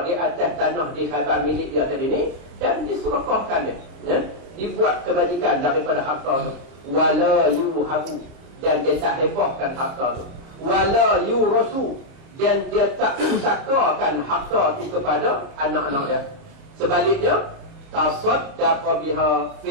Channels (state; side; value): late; left; 30 ms